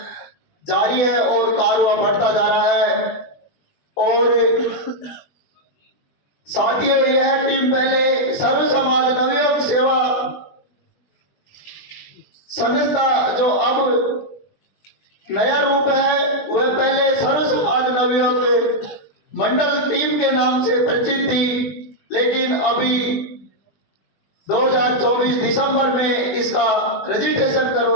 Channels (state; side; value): late; right; 20 ms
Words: जारी है और कार्य बढ़ता जा रहा है। और साथियों, यह टीम पहले सर्व समाज नवयुग सेवा संस्था जो अब नया रूप है, वह पहले सर्व समाज नवयुग मंडल टीम के नाम से परिचित थी, लेकिन अभी 2024 दिसंबर में इसका रजिस्ट्रेशन